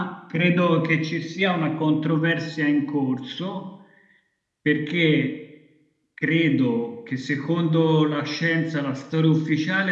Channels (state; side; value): identical; both; correlation 1.00